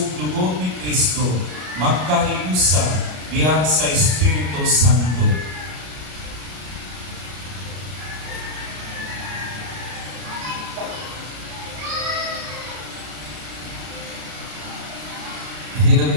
dugo ni Kristo, magkahiusa diha sa Espiritu Santo.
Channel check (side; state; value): left; late; 33 ms